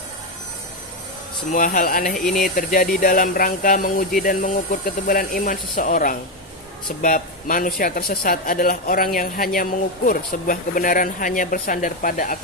Semua hal aneh ini terjadi dalam rangka menguji dan mengukur ketebalan iman seseorang. Sebab manusia tersesat adalah orang yang hanya mengukur sebuah kebenaran hanya bersandar pada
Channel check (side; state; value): both; normal; correlation 0.08